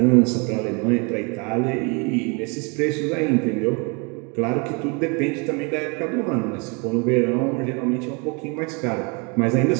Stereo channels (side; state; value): left; quieter; 32.1 dB